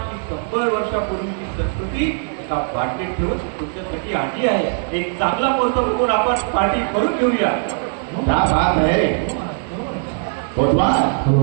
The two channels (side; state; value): left; silent; 58 dB below the other